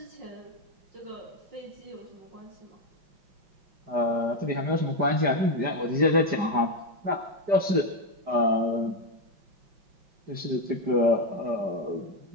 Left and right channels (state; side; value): late; left; 5.0 ms